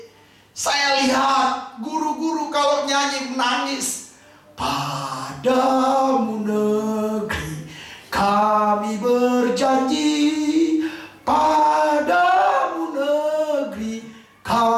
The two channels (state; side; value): identical; both; correlation 1.00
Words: saya lihat guru-guru kalau nyanyi menangis. Padamu negeri kami berjanji, padamu negeri